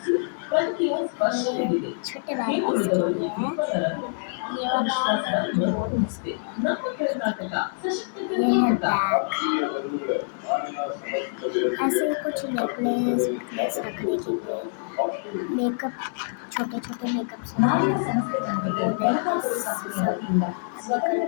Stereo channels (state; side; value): silent; right; digital silence